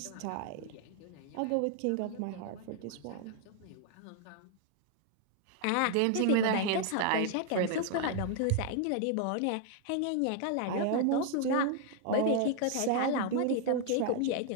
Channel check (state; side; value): different; both; correlation 0.00